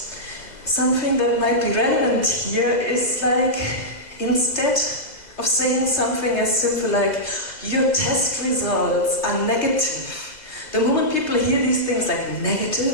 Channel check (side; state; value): right; late; 2.0 ms